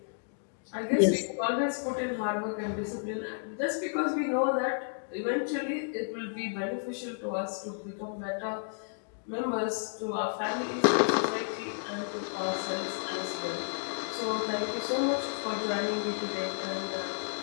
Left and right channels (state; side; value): silent; right; digital silence